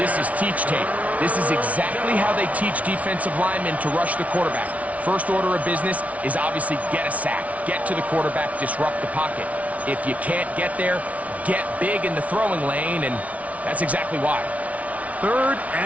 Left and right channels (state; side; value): late; left; 0.067 ms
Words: is teach tape. This is exactly how they teach defensive linemen to rush the quarterback. First order of business is obviously get a sack, get to the quarterback, disrupt the pocket. If you can't get there, get big in the throwing lane, and that's exactly why. 3rd